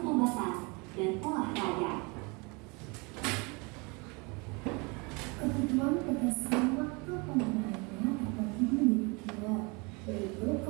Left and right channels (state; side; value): quieter; left; 29.2 dB